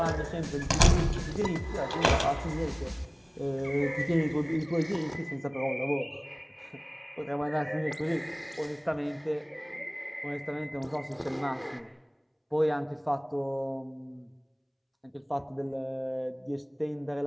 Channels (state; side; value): identical; both; correlation 1.00